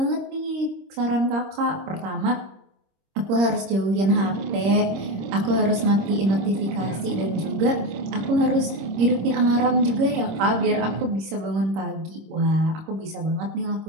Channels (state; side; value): late; left; 26 ms